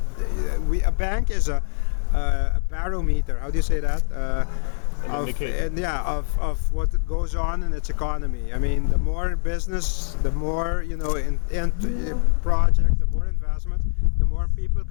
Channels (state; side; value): silent; right; 63 dB below the other